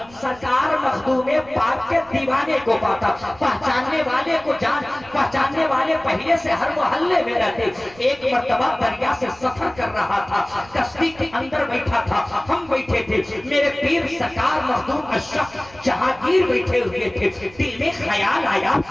सरकार मखदूम पाक के दीवाने को पाता, पहचानने वाले को जान, पहचानने वाले पहले से हर मोहल्ले में रहते। एक मर्तबा दरिया से सफर कर रहा था, कश्ती के अंदर बैठा था, हम बैठे थे, मेरे पीर सरकार मखदूम अशरफ जहांगीर बैठे हुए थे। दिल में ख्याल आया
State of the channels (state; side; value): noise; right; rumble, 23 dB below the sound